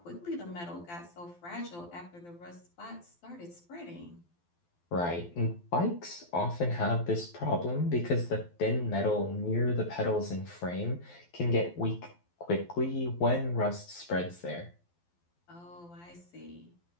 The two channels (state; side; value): late; right; 12 ms